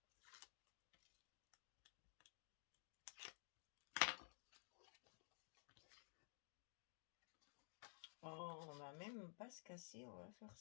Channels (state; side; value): silent; right; digital silence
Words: Oh, on va même pas se casser, on va faire